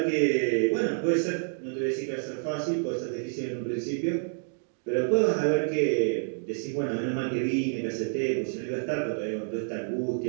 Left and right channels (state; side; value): silent; left; digital silence